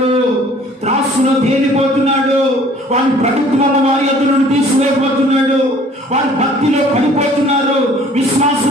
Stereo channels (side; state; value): both; normal; correlation 0.54